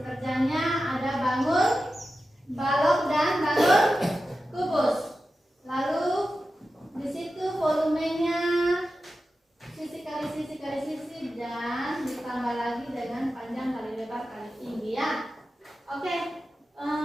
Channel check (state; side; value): normal; both; correlation 0.92